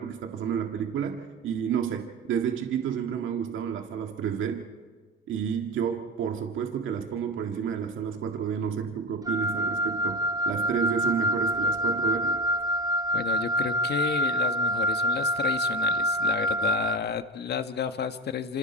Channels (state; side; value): normal; both; correlation 0.25